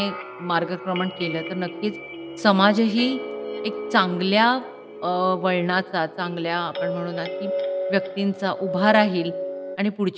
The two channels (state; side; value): identical; both; correlation 1.00